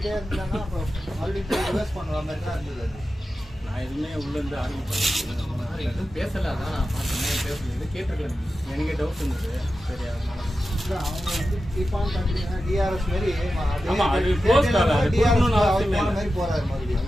இருந்தாங்கன்னா அப்புறம் மறுபடியும் போய் ரிவர்ஸ் பண்ணுற மாதிரி தான் இருந்தது. நான் எதுவுமே உள்ளேருந்து ஆரம்பிப்பேன். எதுவும் பேசலை. அதான் நான் பார்த்தேன் பேசல. இது கேட்டிருக்கேன். எனக்கே டவுட் இருந்தது. சரி அதனால இல்லை அவங்க வந்து கீப்பான் கண்டினியூ டிஆர்எஸ் மாதிரி ஆமாம் அது க்ளோஸ் கால். அது கொடுக்கணும்னு அவசியமே இல்லை. மாதிரி போறாரு மறுபடியும்.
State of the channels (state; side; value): normal; both; correlation 0.92